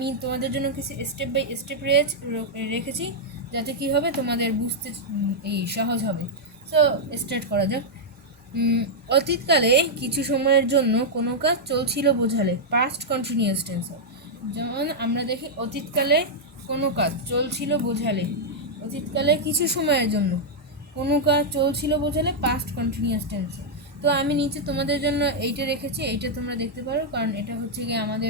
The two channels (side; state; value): both; normal; correlation -0.05